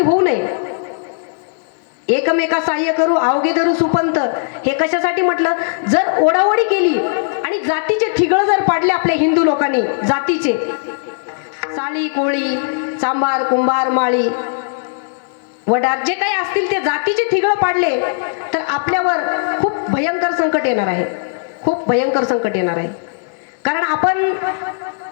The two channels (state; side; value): silent; right; digital silence